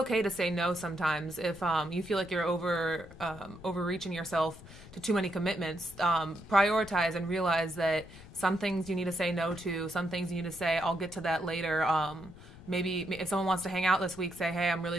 to say no sometimes if you feel like you're overreaching yourself to too many commitments. Prioritize and realize that some things you need to say no to, some things you need to say, I'll get to that later. Maybe if someone wants to hang out this week, say, hey, I'm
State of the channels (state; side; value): noise; left; rumble, 18 dB below the sound